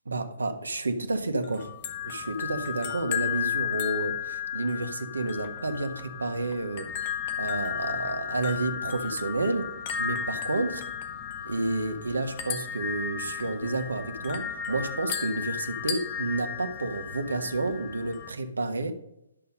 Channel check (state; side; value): inverted; both; correlation -0.64